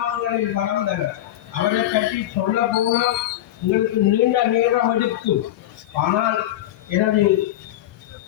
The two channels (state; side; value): quieter; right; 13.6 dB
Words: வளர்ந்தவர். அவரை பற்றி சொல்ல போனால் உங்களுக்கு நீண்ட நேரம் எடுக்கும். ஆனால் எனது